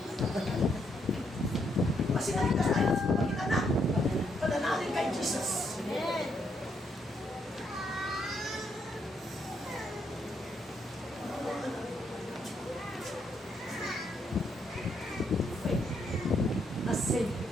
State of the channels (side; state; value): both; normal; correlation 0.75